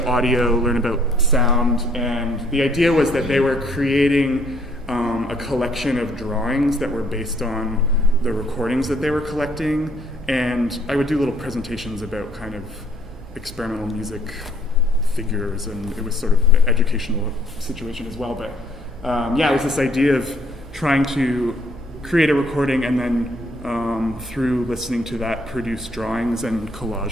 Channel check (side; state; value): both; normal; correlation 0.63